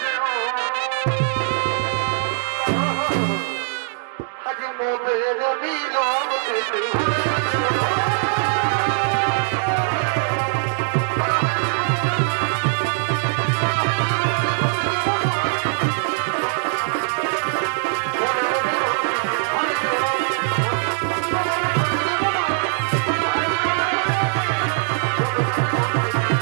যেও হাজে মোদের মিলন ভুলে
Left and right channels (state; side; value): silent; left; digital silence